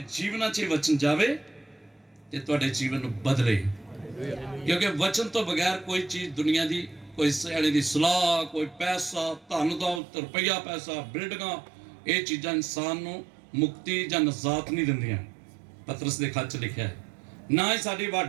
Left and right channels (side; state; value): left; drops out; at 10.0 s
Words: जीवन च वचन जावे ते तुहाडे जीवन नूं बदले। क्योंकि वचन तो बगैर कोई चीज़ दुनिया की, कोई सियाणे की सलाह, कोई पैसा, धन दौलत, रुपया पैसा, बिल्डिंगां, ये चीज़ां इंसान नूं मुक्ति जां नजात नहीं दिंदियां। पतरस दे खत च लिखिआ है ना ही साडी